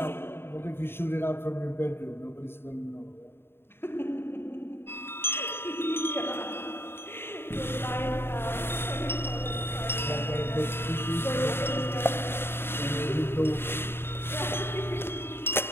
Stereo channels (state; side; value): late; right; 0.11 ms